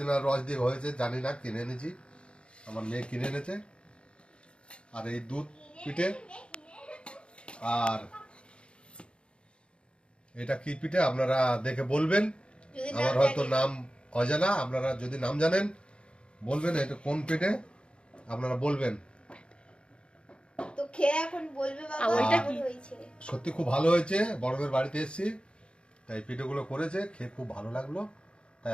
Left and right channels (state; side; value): late; right; 0.056 ms